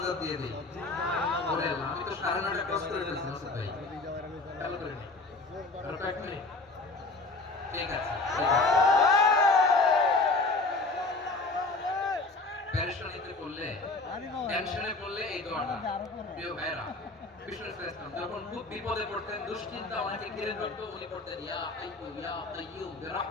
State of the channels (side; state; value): right; quieter; 3.4 dB